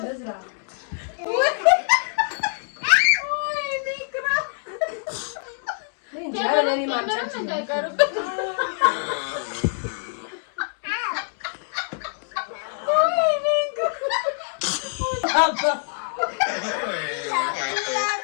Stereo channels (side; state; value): right; silent; digital silence